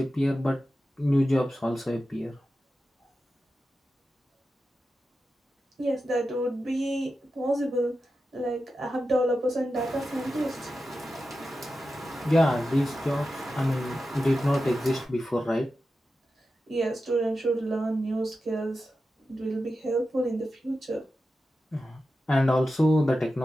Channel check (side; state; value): both; normal; correlation 0.91